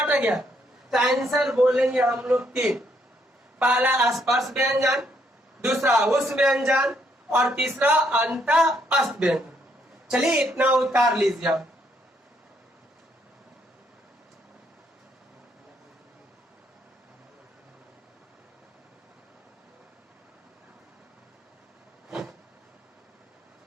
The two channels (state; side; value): normal; both; correlation 0.72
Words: गया? तो आंसर बोलेंगे हम लोग 3। पहला स्पर्श व्यंजन, दूसरा उस व्यंजन और तीसरा अंतःस्थ व्यंजन। चलिए इतना उतार लीजिए आप।